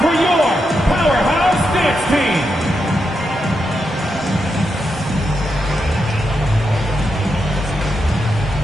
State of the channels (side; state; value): both; normal; correlation 0.85